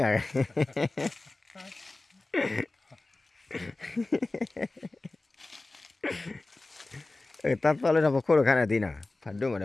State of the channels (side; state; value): right; quieter; 3.1 dB